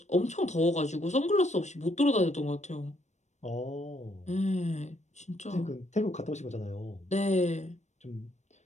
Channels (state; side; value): late; right; 0.34 ms